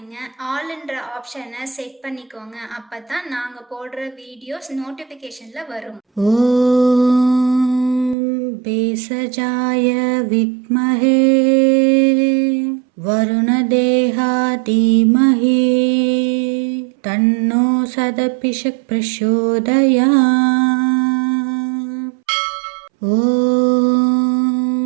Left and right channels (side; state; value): left; drops out; at 8.2 s